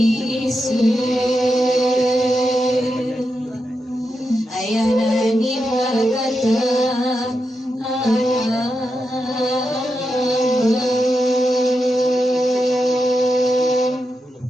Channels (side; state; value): both; normal; correlation 0.87